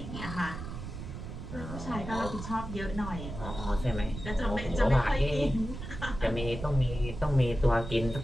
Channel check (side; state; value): right; noise; rumble, 8 dB below the sound